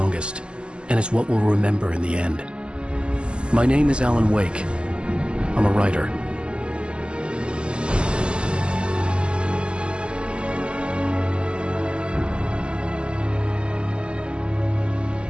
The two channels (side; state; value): left; late; 0.050 ms